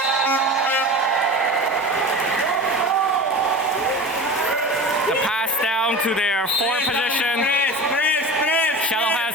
The pass down to their 4 position. Shadow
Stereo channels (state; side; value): normal; both; correlation 0.32